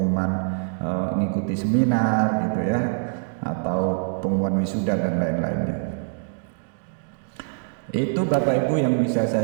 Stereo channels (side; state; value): left; silent; digital silence